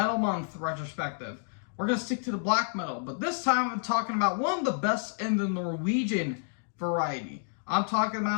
Month retrospective, we're going to stick to the black metal. But this time, I'm talking about one of the best in the Norwegian variety. I'm talking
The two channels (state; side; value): silent; right; digital silence